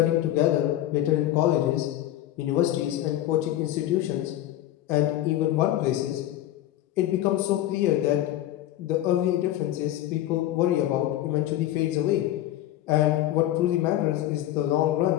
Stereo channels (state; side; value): quieter; right; 13.5 dB